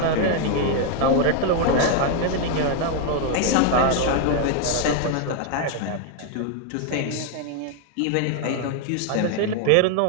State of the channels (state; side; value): different; both; correlation 0.00